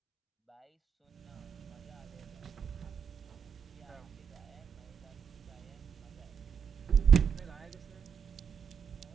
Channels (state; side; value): quieter; left; 7.0 dB